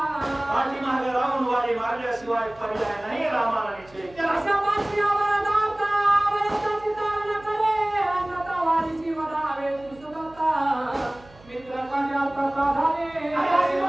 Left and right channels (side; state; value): right; noise; hum, 25 dB below the sound